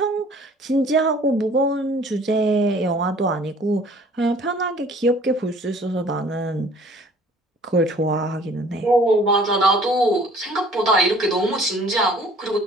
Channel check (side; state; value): both; normal; correlation 0.53